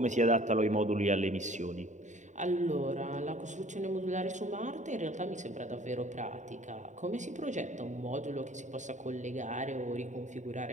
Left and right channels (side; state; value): left; late; 0.35 ms